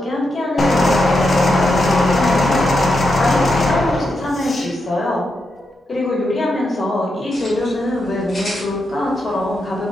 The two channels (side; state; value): both; normal; correlation 0.84